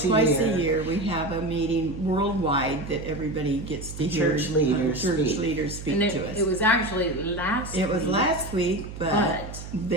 a year. Twice a year we have a meeting worldwide that everybody gets to hear. Church leaders speak to us. It was actually last week. It was last week, but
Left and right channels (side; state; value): right; noise; hum, 11 dB below the sound